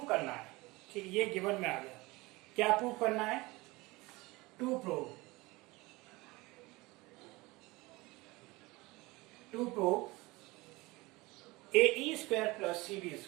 करना है, ठीक, ये गिवन में आ गया, क्या प्रूव करना है, to prove AE square plus CD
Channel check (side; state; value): left; quieter; 22.3 dB